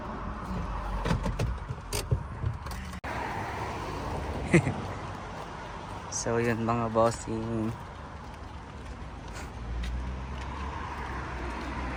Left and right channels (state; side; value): identical; both; correlation 1.00